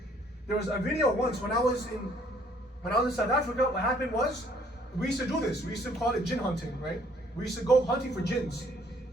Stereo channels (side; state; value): both; normal; correlation 0.62